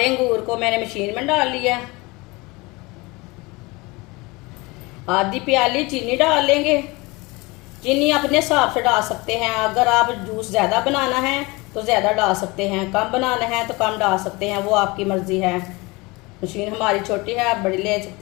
अंगूर को मैंने मशीन में डाल लिया है। आधी प्याली चीनी डाल लेंगे। चीनी अपने हिसाब से डाल सकते हैं। अगर आप जूस ज़्यादा बनाना है तो ज़्यादा डाल सकते हैं, कम बनाना है तो कम डाल सकते हैं, वो आपकी मर्ज़ी है। मशीन हमारी छोटी है, आप बड़ी ले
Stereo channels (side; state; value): right; quieter; 24.4 dB